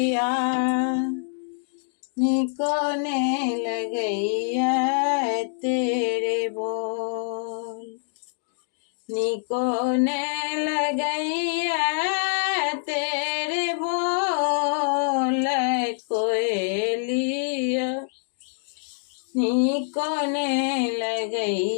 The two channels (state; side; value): silent; right; digital silence